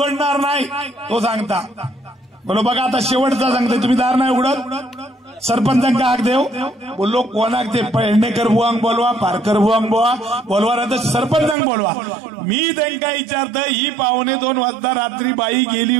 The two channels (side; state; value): left; drops out; at 11.6 s